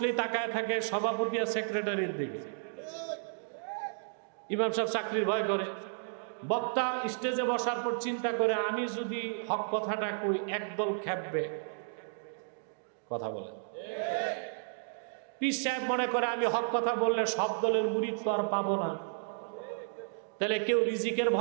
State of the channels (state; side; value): silent; left; digital silence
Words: তাকায় থাকে সভাপতি আর সেক্রেটারির দিকে। ইমাম সাহেব চাকরির ভয় করে। বক্তা স্টেজে বসার পর চিন্তা করে, আমি যদি হক কথাটা কই একদল খেপবে, কথা বলে। পীর সাহেব মনে করে আমি হক কথা বললে সব দলের মুরিদ তো আর পাবো না। তাহলে কেউ রিজিকের